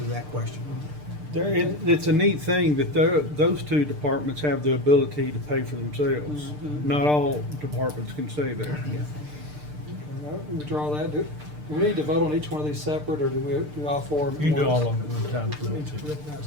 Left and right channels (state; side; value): late; left; 6.7 ms